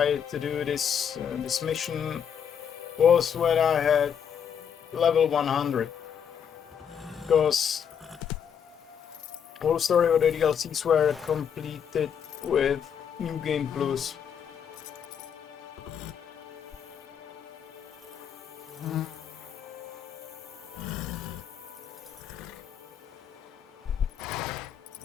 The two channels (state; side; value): quieter; right; 7.9 dB